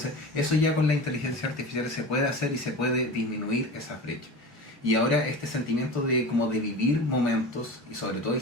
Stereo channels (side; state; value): both; normal; correlation 0.32